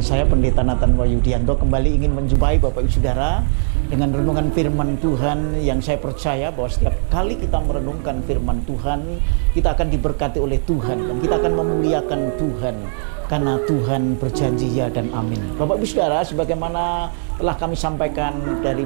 saya Pendeta Nathan Wahyudianto kembali ingin menjumpai Bapak Ibu Saudara dengan renungan firman Tuhan yang saya percaya bahwa setiap kali kita merenungkan firman Tuhan, kita akan diberkati oleh Tuhan dan kita akan memuliakan Tuhan karena Tuhan berjanji ya dan amin. Bapak Ibu Saudara, sebagaimana telah kami sampaikan dari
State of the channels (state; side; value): silent; left; digital silence